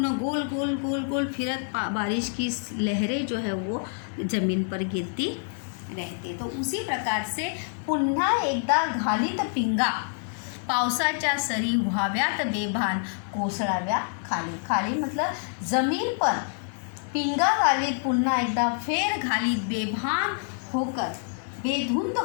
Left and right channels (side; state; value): right; silent; 60 dB below the other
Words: गोल फिरत बारिश की लहरें जो है वो ज़मीन पर गिरती रहते. तो उसी प्रकार से पुन्हा एकदा घालीत पिंगा पावसाच्या सरी व्हाव्यात बेभान कोसळाव्या खाली. खाली मतलब जमीन पर पिंगा घालीत पुन्हा एकदा फेर घालीत बेभान होकर, बेधुंद